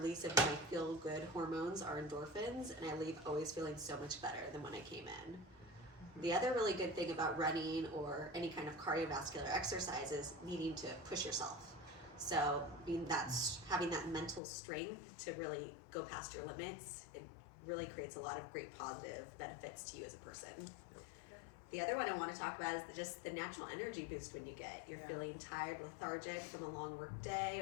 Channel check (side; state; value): right; drops out; at 14.4 s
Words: of my feel-good hormones, our endorphins, and I leave always feeling so much better than when I came in. The other really good thing about running or any kind of cardiovascular exercise is needing to push yourself. So having that mental strength to really go past your limits, it really creates a lot of great positive benefits to you as a person. The other one I want to talk about is just the natural energy boost when you get. You're feeling tired, lethargic from a long work day,